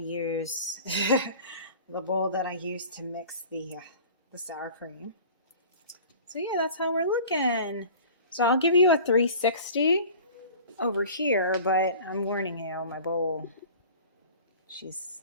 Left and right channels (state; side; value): inverted; both; correlation -0.43